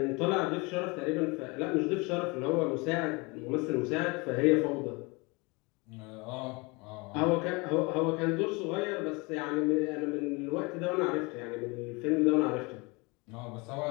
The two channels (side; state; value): right; quieter; 27.1 dB